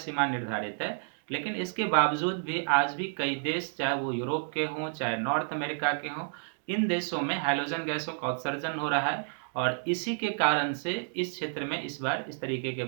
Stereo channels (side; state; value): left; silent; digital silence